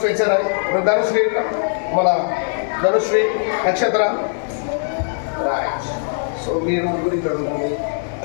స్వేచ్ఛరాయి. నువ్వు ధనుశ్రీ మన ధనుశ్రీ నక్షత్ర రైట్. సో మీరు ముగ్గురు ఇక్కడ ఉంటుంది.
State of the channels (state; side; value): silent; right; digital silence